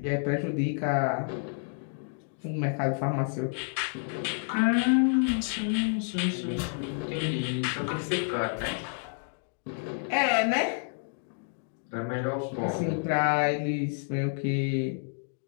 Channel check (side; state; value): right; silent; 58 dB below the other